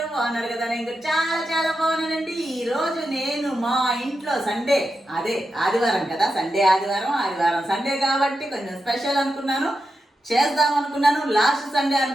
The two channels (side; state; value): both; normal; correlation 0.88